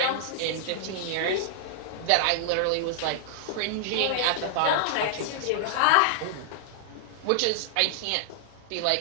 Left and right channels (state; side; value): different; both; correlation -0.01